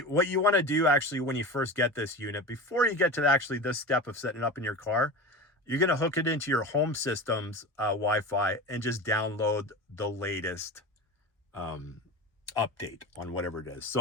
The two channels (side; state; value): both; normal; correlation 0.29